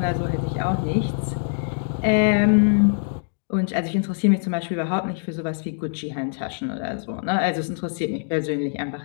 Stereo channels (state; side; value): silent; right; digital silence